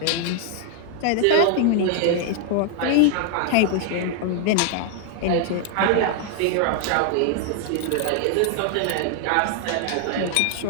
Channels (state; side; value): different; both; correlation 0.00